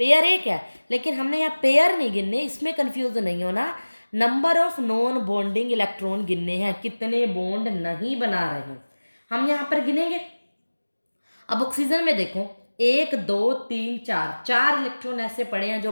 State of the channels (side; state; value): both; inverted; correlation -1.00